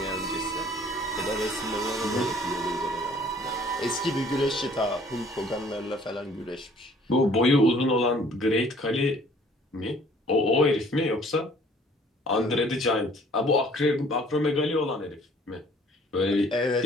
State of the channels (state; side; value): normal; both; correlation 0.55